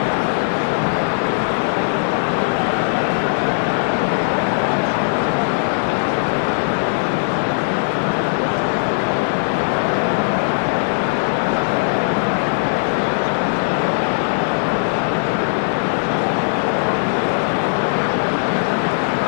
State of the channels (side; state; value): right; silent; digital silence